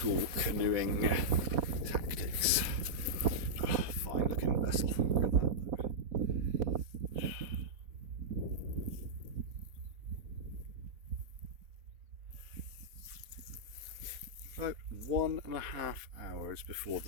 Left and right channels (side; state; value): left; late; 4.2 ms